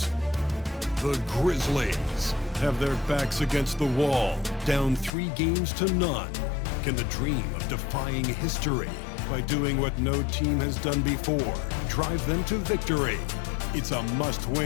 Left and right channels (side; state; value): right; drops out; at 5.1 s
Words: The Grizzlies have their backs against the wall, down 3 games to none. Can the dream of defying history by doing what no team has done before drive them to victory? It's a